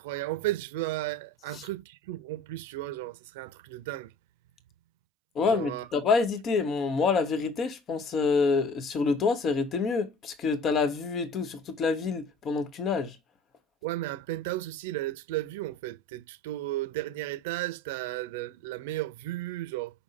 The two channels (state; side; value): normal; both; correlation 0.43